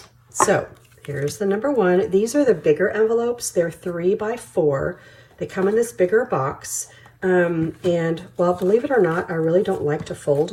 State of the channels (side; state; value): both; identical; correlation 1.00